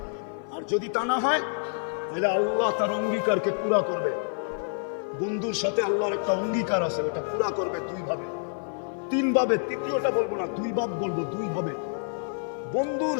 আর যদি তা না হয় তাহলে আল্লাহ তার অঙ্গীকারকে পুরা করবে। বন্ধুর সাথে আল্লাহর একটা অঙ্গীকার আছে, ওটা পুরা করবে 2 ভাবে 3 ভাবে, তৃতীয়টা বলবো না, 2 ভাব বলবো, 2 ভাবে। বন্ধুর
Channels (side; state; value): right; silent; 60 dB below the other